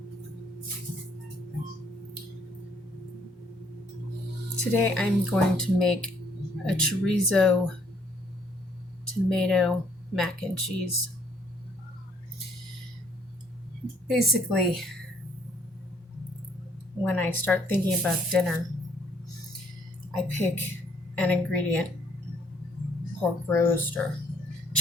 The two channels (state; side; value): normal; both; correlation 0.65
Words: today I'm going to make a chorizo tomato mac and cheese. Basically, when I start thinking about dinner, I pick an ingredient, pork roast or